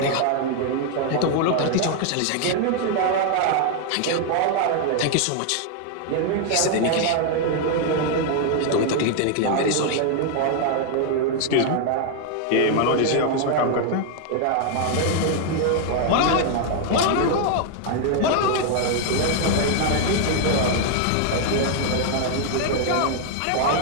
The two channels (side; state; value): both; different; correlation 0.00